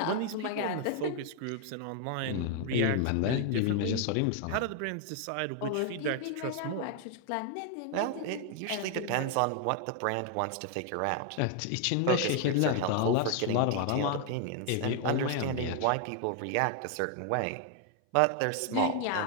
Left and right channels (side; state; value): both; different; correlation 0.00